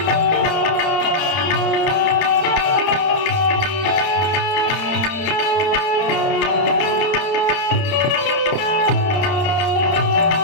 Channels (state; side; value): late; right; 30 ms